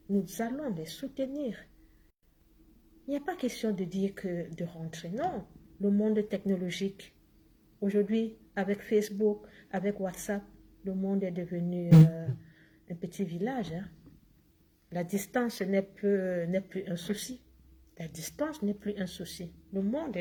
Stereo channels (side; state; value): both; identical; correlation 1.00